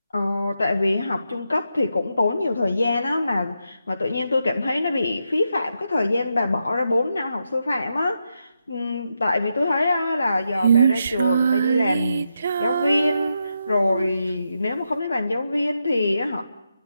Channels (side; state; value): both; inverted; correlation -0.84